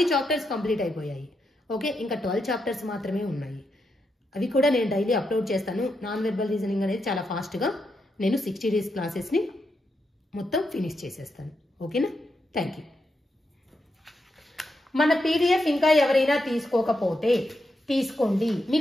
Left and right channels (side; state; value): both; normal; correlation 0.84